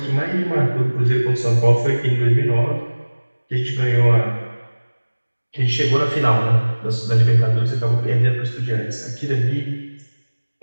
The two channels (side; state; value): both; inverted; correlation -1.00